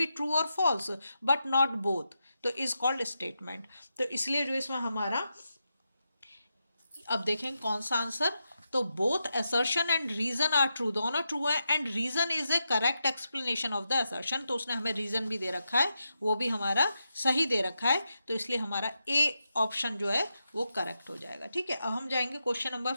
ट्रू और फॉल्स बट नॉट बोथ, तो इज कॉल्ड स्टेटमेंट। तो इसलिए जो इसमें हमारा, अब देखें कौन सा आंसर तो both assertion and reason are true, दोनों ट्रू है, and reason is a correct explanation of the assertion, तो उसने हमें रीजन भी दे रखा है, वो भी हमारा सही दे रखा है, तो इसलिए हमारा ए ऑप्शन जो है वो करेक्ट हो जाएगा। ठीक है, अब हम जाएंगे क्वेश्चन नंबर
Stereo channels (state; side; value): inverted; both; correlation -0.87